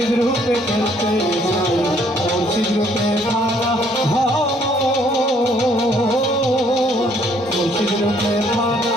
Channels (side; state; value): both; normal; correlation 0.64